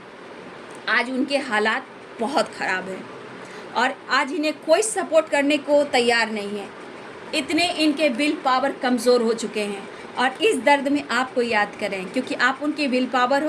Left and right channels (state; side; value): identical; both; correlation 1.00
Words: आज उनके हालात बहुत ख़राब हैं और आज इन्हें कोई सपोर्ट करने को तैयार नहीं है। इतने इनके विल पावर कमज़ोर हो चुके हैं और इस दर्द में आपको याद करें, क्योंकि आप उनके विल पावर